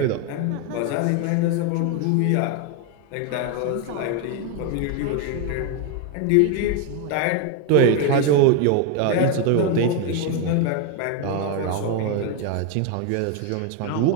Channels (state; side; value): different; both; correlation 0.02